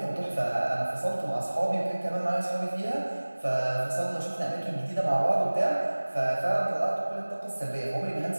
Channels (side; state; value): both; inverted; correlation -1.00